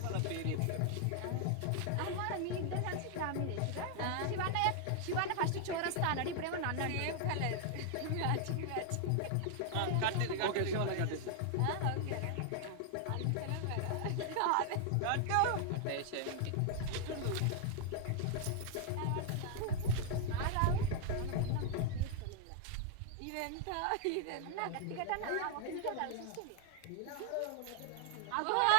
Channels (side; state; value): both; different; correlation 0.00